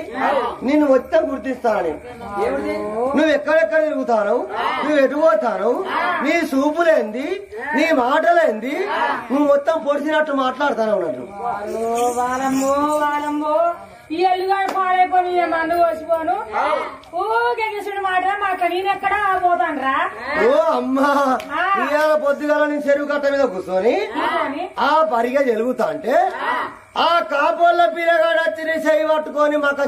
నిన్ను మొత్తం గుర్తిస్తాను. నువ్వు ఎక్కడెక్కడ తిరుగుతాను, నువ్వు ఎటు పోతాను, నీ చూపులేంది, నీ మాటలేంది, నువ్వు మొత్తం పొడిచినట్టు మాట్లాడుతాను అన్నట్టు. వాలమ్మో వాలమ్మో ఈ ఎల్లుగాడు పాడైపోయి మందు కోసిపోను ఊగేసుడు మాట మాట నేనెక్కడా పోతాను రా. ఓ అమ్మా, ఇవాళ పొద్దుగాల నీ చెరువు కట్ట మీద కూర్చొని ఆ పరిగా జరుగుతా అంటే ఆ కాపోళ్ళ పిల్లగాడు వచ్చి నీ చెయ్యి పట్టుకొని మక్క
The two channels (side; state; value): both; identical; correlation 1.00